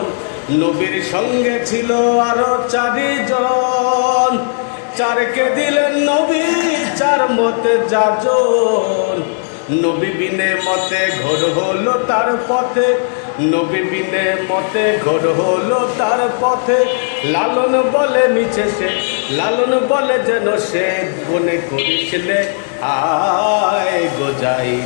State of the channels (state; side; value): silent; right; digital silence